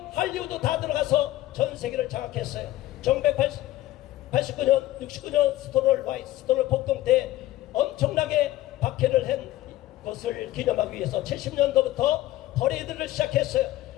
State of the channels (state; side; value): quieter; right; 15.5 dB